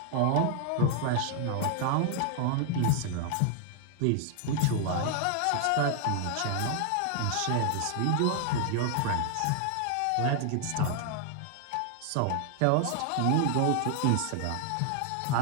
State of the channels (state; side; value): different; both; correlation 0.00